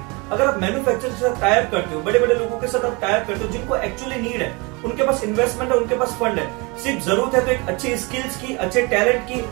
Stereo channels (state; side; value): quieter; left; 28.1 dB